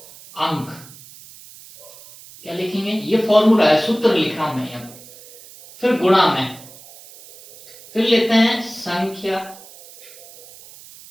अंक। क्या लिखेंगे, ये फॉर्मूला है, सूत्र लिख रहा हूं मैं यहां। फिर गुणा में, फिर लेते हैं संख्या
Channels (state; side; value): noise; right; hiss, 20 dB below the sound